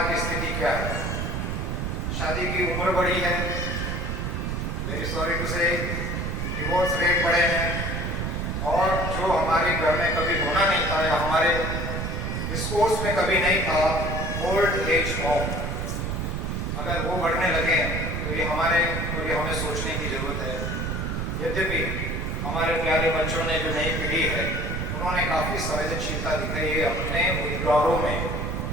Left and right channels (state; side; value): noise; right; rumble, 2 dB below the sound